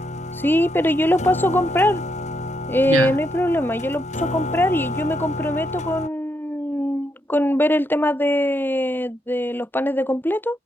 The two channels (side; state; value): both; normal; correlation 0.79